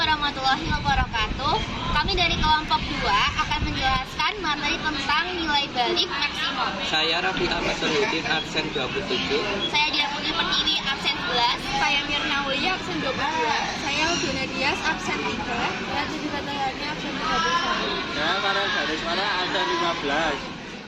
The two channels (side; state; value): both; identical; correlation 1.00